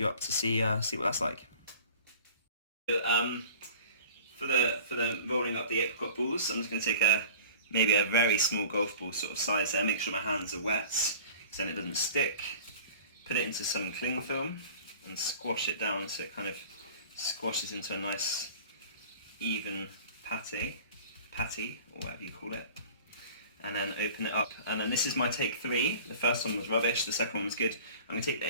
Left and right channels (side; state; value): both; inverted; correlation -0.43